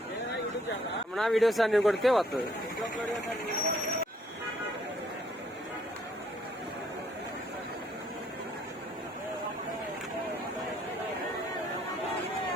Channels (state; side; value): normal; both; correlation 0.66